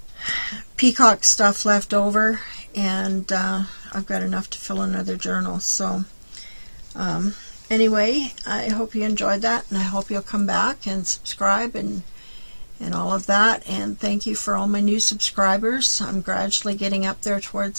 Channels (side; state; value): both; inverted; correlation -1.00